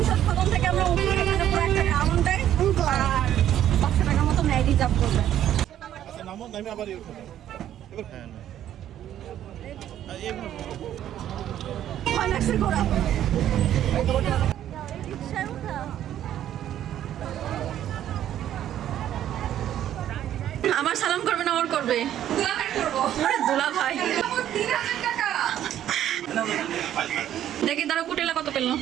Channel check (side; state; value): left; quieter; 11.4 dB